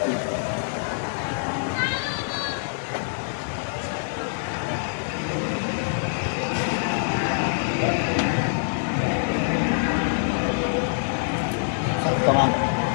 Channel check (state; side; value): silent; right; 62 dB below the other